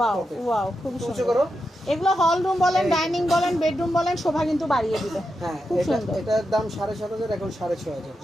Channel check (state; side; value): normal; both; correlation 0.87